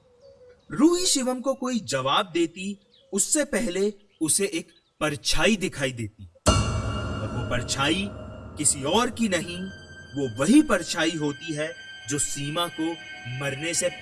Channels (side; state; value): both; identical; correlation 1.00